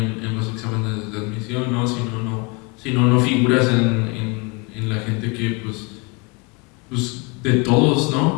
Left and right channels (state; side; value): quieter; right; 29.9 dB